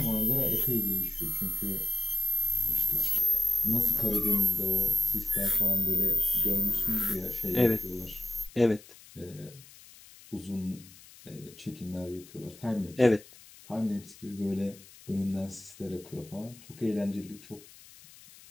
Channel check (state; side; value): noise; left; hiss, 21 dB below the sound